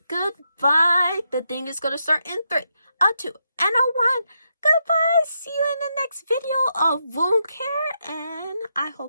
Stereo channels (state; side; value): inverted; both; correlation -0.82